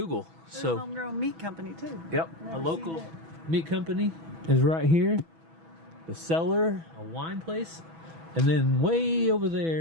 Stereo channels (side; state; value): left; late; 6.1 ms